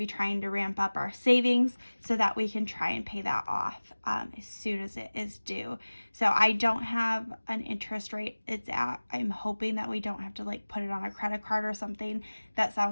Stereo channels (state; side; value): inverted; both; correlation -1.00